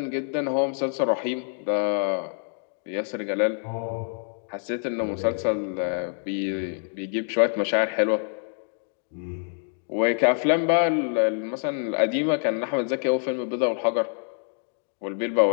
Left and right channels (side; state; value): right; silent; 61 dB below the other